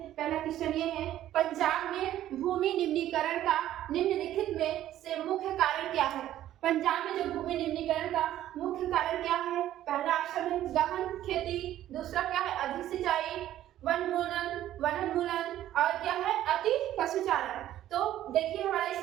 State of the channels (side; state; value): left; quieter; 12.8 dB